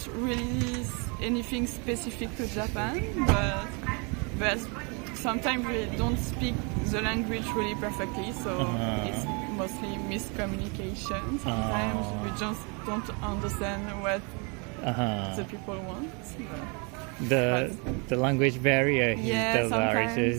really anything specific to Japan, but sometimes we don't speak the language really perfectly, so it's mostly miscommunication. Sometimes we just don't understand what the people want. The language barrier is the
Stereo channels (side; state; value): left; quieter; 33.1 dB